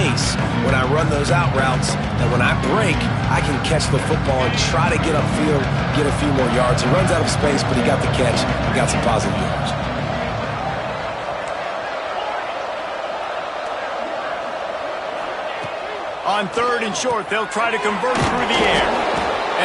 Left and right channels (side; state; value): both; identical; correlation 1.00